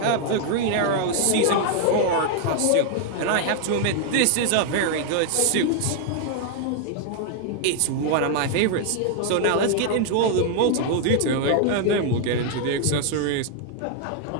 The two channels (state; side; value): different; both; correlation 0.00